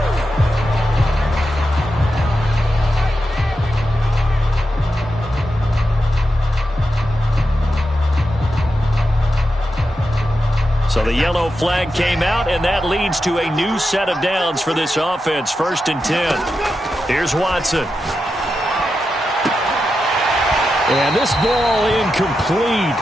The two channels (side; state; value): both; normal; correlation 0.88